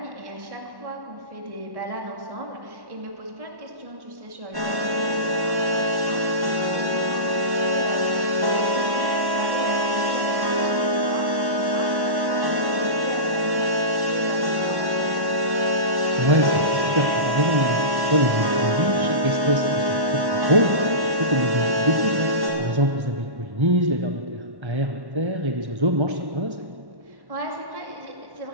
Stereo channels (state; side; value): late; left; 1.1 ms